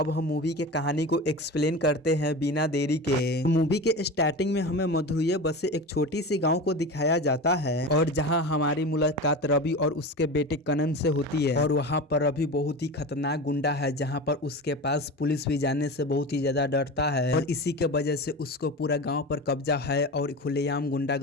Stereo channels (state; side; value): normal; both; correlation 0.29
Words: हम मूवी के कहानी को एक्सप्लेन करते हैं बिना देरी के। मूवी के स्टार्टिंग में हमें मधुरैया बसे एक छोटी सी गाँव को दिखाया जाता है, और जहाँ हमारी मुलाकात रवि और उसके बेटे कनन से होती है। और वहाँ पर रवि बहुत ही खतरनाक गुंडा है, जहाँ पर उसके पास पुलिस भी जाने से बहुत ही ज्यादा डरता है, और इसी के वजह से उसको पूरा गांव पर कब्जा है और खुलेआम